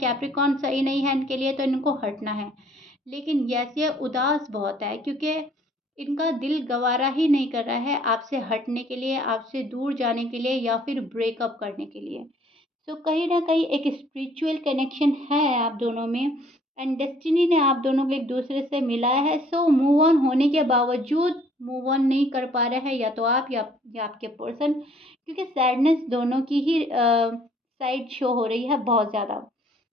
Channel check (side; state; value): both; normal; correlation 0.60